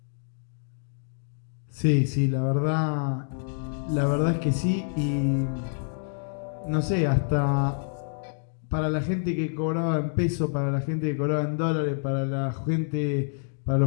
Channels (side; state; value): right; silent; digital silence